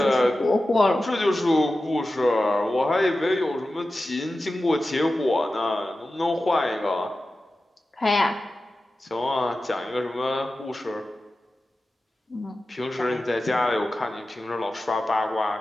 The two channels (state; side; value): normal; both; correlation 0.94